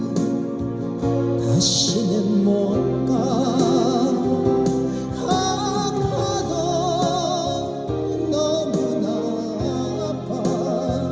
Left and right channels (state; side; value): identical; both; correlation 1.00